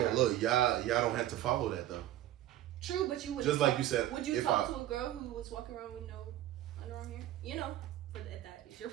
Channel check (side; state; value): left; quieter; 13.5 dB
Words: that? y'all don't have to follow that though. True, but you would Just like you said, Would you if talk I- to a girl who was walking around with no underarm hair? You know, but that is your